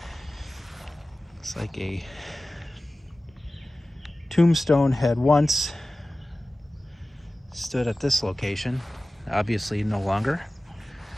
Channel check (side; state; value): both; normal; correlation 0.96